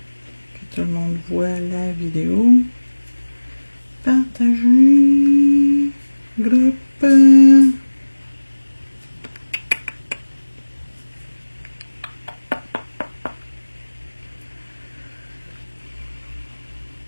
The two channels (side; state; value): both; inverted; correlation -1.00